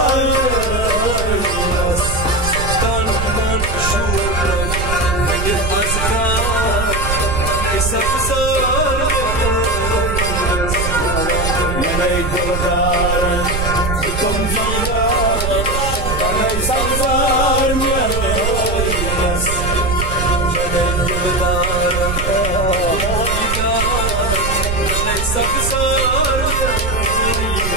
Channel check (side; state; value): right; noise; rumble, 3 dB below the sound